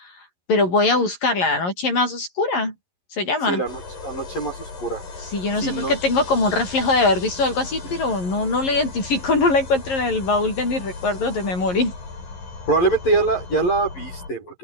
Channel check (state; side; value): late; right; 11 ms